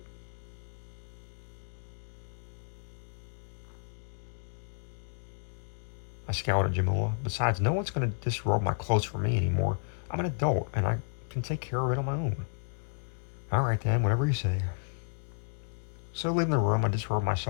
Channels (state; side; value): silent; right; digital silence